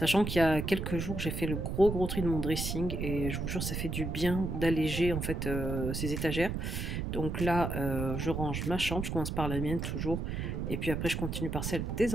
qu'il y a quelques jours j'ai fait le gros tri de mon dressing et je vous jure ça fait du bien d'alléger en fait ces étagères. Donc là, je range ma chambre, je commence par la mienne toujours, et puis après je continue par celle des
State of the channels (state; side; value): noise; right; rumble, 3 dB below the sound